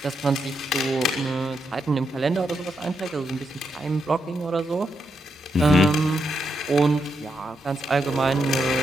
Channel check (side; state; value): both; normal; correlation 0.82